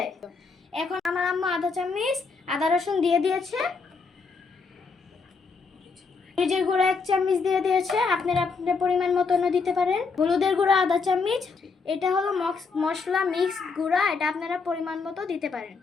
এখন আমার আম্মু আদা চামচ আদা রসুন দিয়ে দিয়েছে। মরিচের গুঁড়া 1 চামচ দিয়ে দিয়েছে, আপনারা আপনাদের পরিমাণ মতনও দিতে পারেন। হলুদের গুঁড়া আধা চামচ, এটা হলো মশলা মিক্স গুঁড়া, এটা আপনারা পরিমাণ মতো দিতে পারেন।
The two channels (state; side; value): quieter; right; 4.7 dB